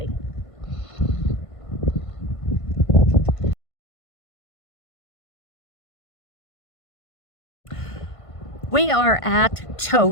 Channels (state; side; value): late; right; 1.5 ms